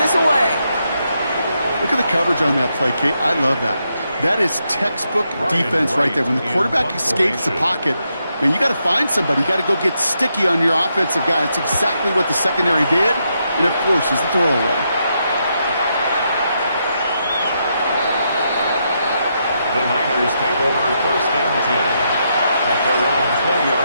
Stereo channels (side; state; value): both; inverted; correlation -0.81